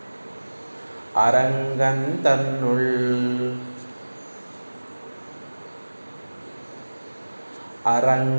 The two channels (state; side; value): inverted; both; correlation -1.00